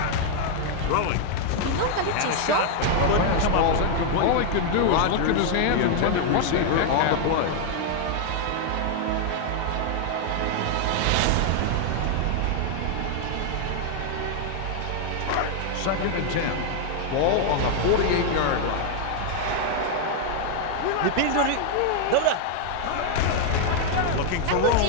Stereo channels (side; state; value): both; different; correlation 0.00